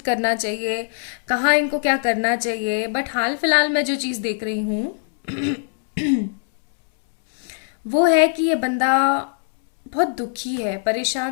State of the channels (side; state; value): right; silent; digital silence